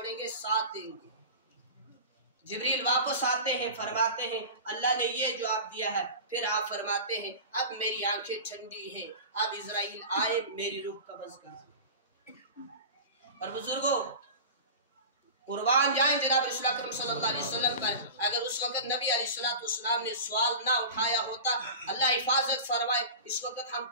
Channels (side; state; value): both; inverted; correlation -0.32